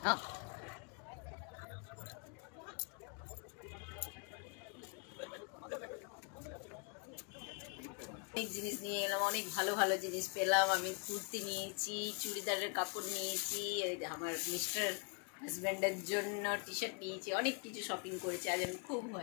হ্যাঁ, অনেক জিনিস নিয়ে এলাম, অনেক ভালো ভালো জিনিস পেলাম। আমি কুর্তি নিয়েছি, চুড়িদারের কাপড় নিয়েছি, আমার মিস্টার হাজব্যান্ডের জন্য টি শার্ট নিয়েছি, অনেক কিছু শপিং করেছি। আজ আমি খুব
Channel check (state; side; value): quieter; right; 38.1 dB